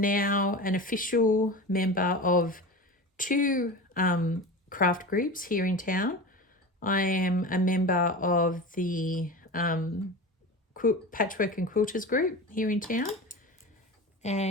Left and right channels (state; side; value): normal; both; correlation 0.29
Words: an official member of 2 craft groups here in town. I am a member of the Patchwork and Quilters group here in town,